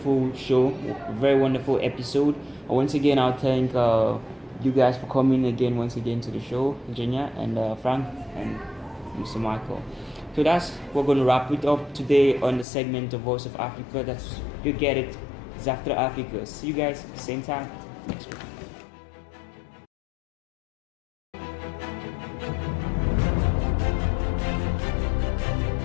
show, a very wonderful episode. Once again, I'll thank you guys for coming again once again to the show, Virginia and Frank and Mr. Michael. So we're going to wrap it up today on the segment of Voice of Africa. You get it. It's After Africa. See you guys same time next week.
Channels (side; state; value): right; drops out; at 12.7 s